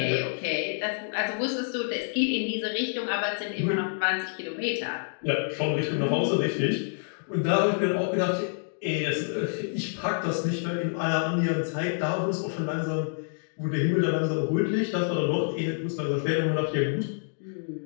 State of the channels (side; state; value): right; silent; digital silence